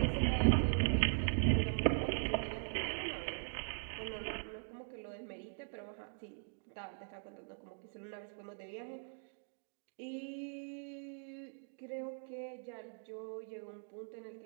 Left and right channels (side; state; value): left; silent; digital silence